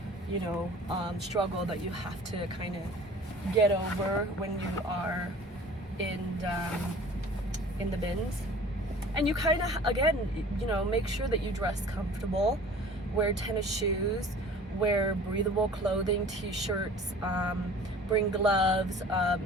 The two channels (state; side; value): normal; both; correlation 0.45